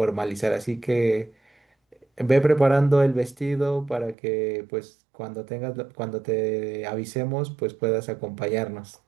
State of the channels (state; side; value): drops out; left; at 4.2 s